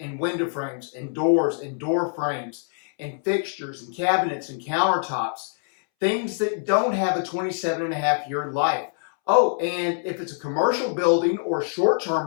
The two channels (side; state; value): right; silent; 62 dB below the other